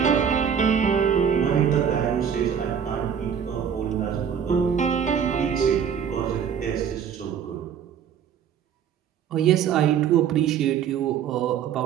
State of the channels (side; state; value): left; quieter; 8.0 dB